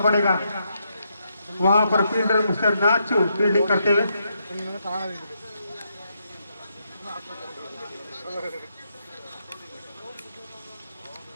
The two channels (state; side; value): inverted; both; correlation -0.79